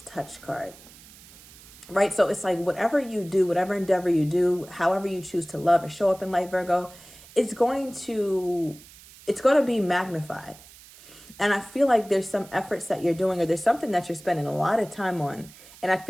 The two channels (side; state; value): right; noise; hiss, 21 dB below the sound